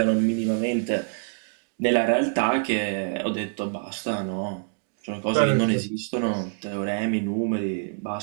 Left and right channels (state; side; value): silent; left; digital silence